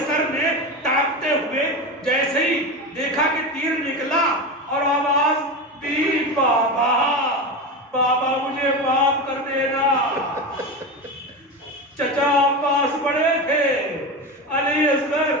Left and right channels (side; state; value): both; normal; correlation 0.22